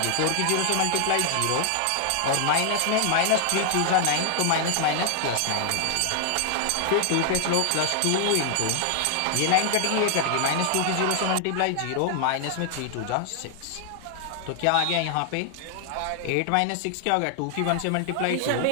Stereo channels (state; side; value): different; both; correlation 0.00